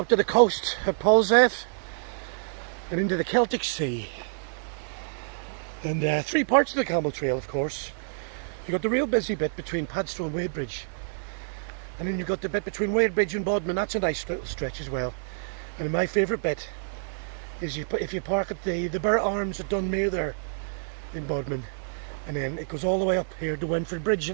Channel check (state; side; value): silent; left; digital silence